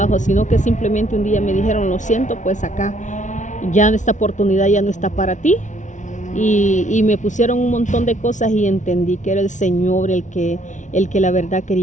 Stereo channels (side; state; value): right; late; 0.36 ms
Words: sino que simplemente un día me dijeron, lo siento, pues acá ya esta oportunidad ya no está para ti. Y me pusieron un montón de cosas y entendí que era el Señor el que la verdad